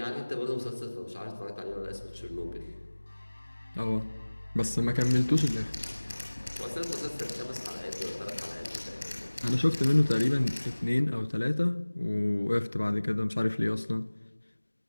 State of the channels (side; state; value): both; inverted; correlation -1.00